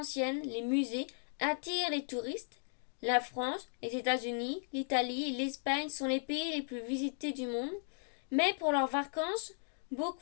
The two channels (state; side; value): silent; right; digital silence